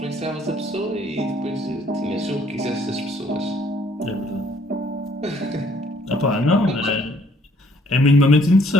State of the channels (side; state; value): both; normal; correlation 0.63